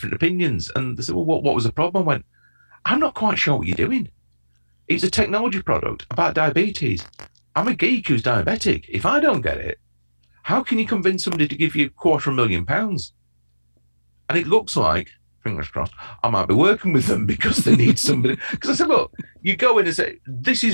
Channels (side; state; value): both; inverted; correlation -1.00